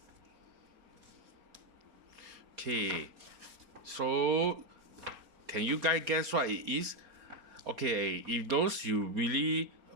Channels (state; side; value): late; left; 4.4 ms